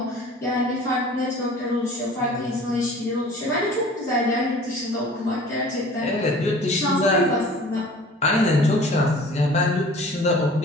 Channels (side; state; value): both; normal; correlation 0.46